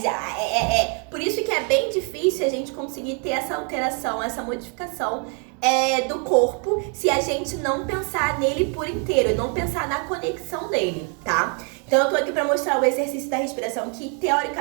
Por isso que é bem difícil a gente conseguir ter essa alteração, essa modificação do corpo se a gente não pensar nele por inteiro e não pensar na conexão dele, tá? Então eu tô aqui pra mostrar o exercício da respiração, que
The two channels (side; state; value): left; quieter; 39.3 dB